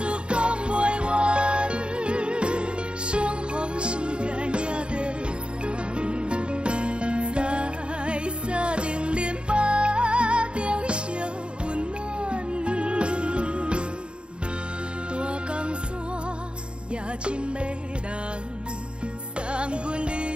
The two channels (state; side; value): late; left; 0.055 ms